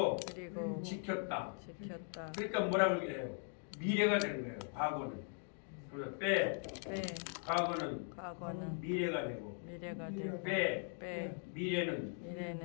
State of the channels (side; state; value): right; silent; 51 dB below the other